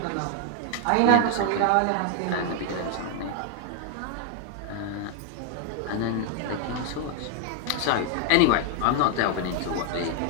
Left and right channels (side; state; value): both; different; correlation 0.00